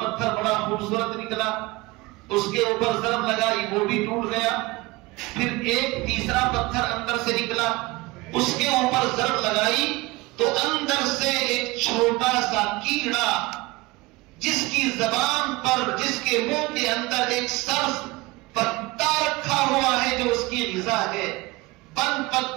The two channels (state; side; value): quieter; left; 22.3 dB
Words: بڑا خوبصورت نکلا، اس کے اوپر ضرب لگائی، وہ بھی ٹوٹ گیا. پھر ایک تیسرا پتھر اندر سے نکلا، اس کے اوپر ضرب لگائی تو اندر سے ایک چھوٹا سا کیڑا جس کی زبان پر، جس کے منہ کے اندر ایک سبز پتا رکھا ہوا ہے جو اس کی غذا ہے، بند